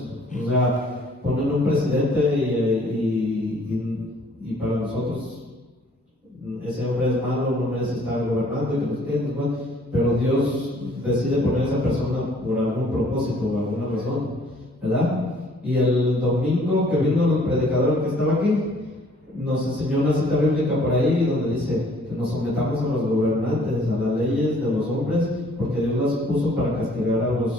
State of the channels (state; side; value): normal; both; correlation 0.59